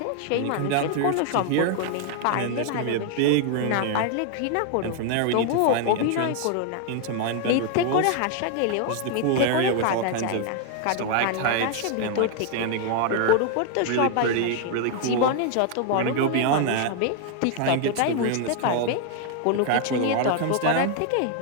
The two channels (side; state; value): both; different; correlation 0.00